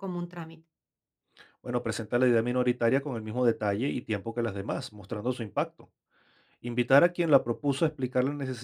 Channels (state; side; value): identical; both; correlation 1.00